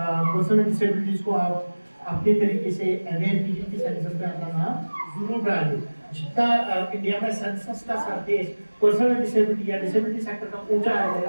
डिसेबिलिटीज को आप अपने तरीके से अवेयर कीजिए कि सेंसस में अपना नाम जरूर डालिए। जितना इंडिया में सेंसस का सरफेस पर्सन डिसेबिलिटी या डिसेबिलिटी सेक्टर का ऊंचा आ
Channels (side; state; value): both; inverted; correlation -1.00